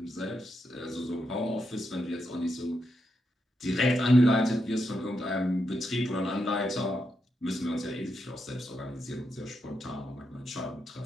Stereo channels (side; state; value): both; normal; correlation 0.83